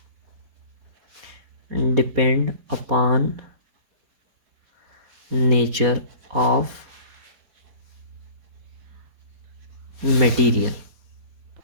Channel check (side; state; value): left; late; 4.2 ms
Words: depend upon nature of material.